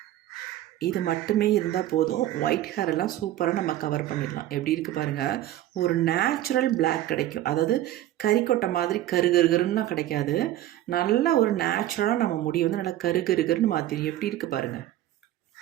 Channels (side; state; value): left; quieter; 13.7 dB